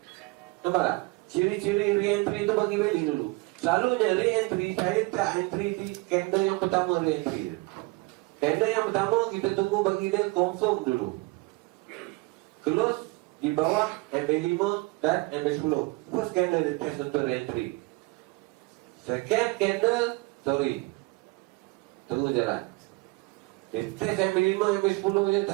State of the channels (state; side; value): quieter; left; 24.8 dB